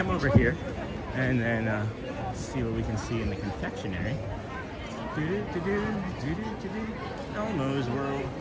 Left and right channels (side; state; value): both; identical; correlation 1.00